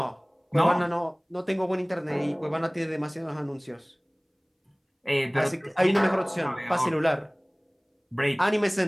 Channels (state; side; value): identical; both; correlation 1.00